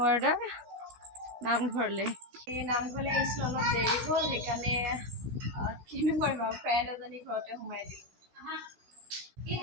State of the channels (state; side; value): late; left; 16 ms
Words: ৱাৰ্ডৰ নামঘৰলৈ। এই নামঘৰলৈ আহিছিলোঁ, অলপ দেৰি হ'ল, সেইকাৰণে কিনো কৰিম আৰু ফ্ৰেণ্ড এজনী ঘৰতে সোমাই দিলোঁ।